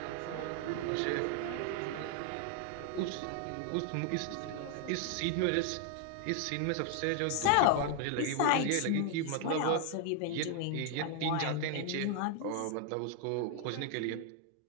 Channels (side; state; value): both; different; correlation 0.00